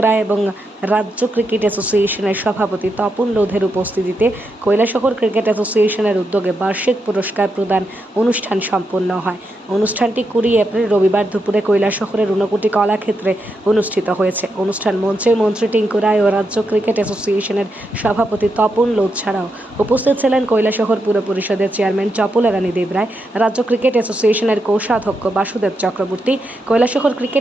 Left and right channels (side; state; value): both; normal; correlation 0.84